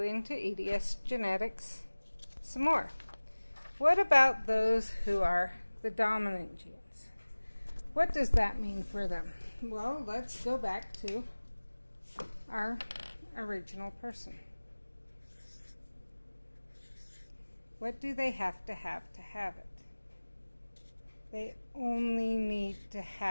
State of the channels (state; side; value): inverted; both; correlation -1.00